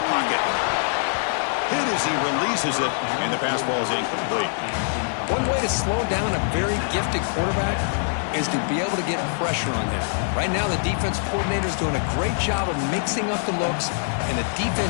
pocket. Hit as he releases it, and the pass ball is incomplete. One way to slow down a very gifted quarterback is to be able to get pressure on him. Right now, the defense coordinator is doing a great job of mixing up the looks, and the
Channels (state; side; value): silent; right; digital silence